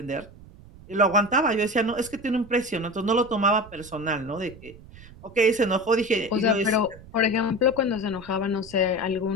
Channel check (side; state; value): right; noise; rumble, 20 dB below the sound